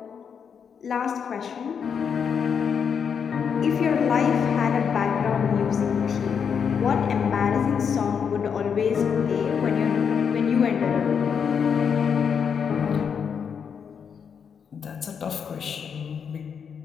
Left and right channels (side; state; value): right; quieter; 6.9 dB